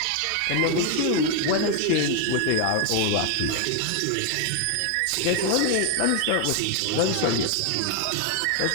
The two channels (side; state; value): both; different; correlation 0.00